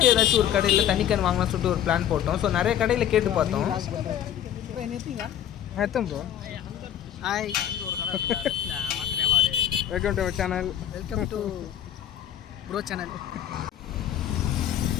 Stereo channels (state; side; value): quieter; right; 10.4 dB